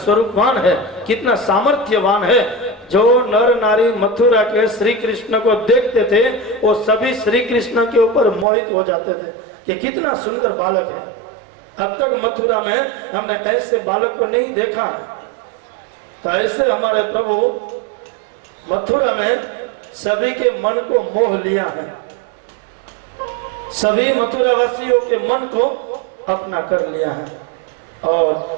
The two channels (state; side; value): drops out; left; at 8.5 s